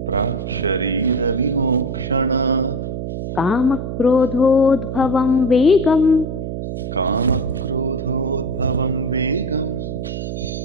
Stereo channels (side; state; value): right; noise; hum, 5 dB below the sound